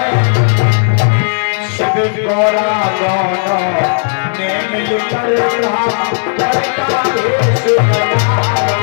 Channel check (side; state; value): right; silent; digital silence